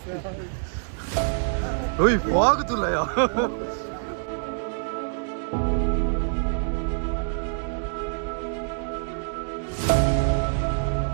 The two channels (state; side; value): silent; left; digital silence